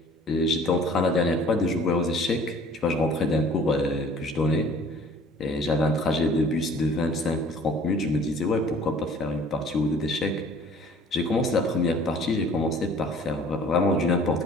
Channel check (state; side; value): normal; both; correlation 0.51